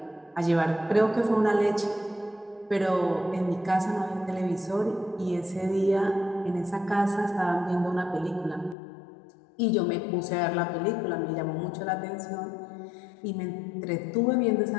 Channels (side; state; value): right; drops out; at 8.8 s